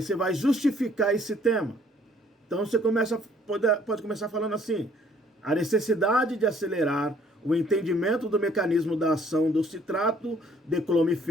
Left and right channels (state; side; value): normal; both; correlation 0.61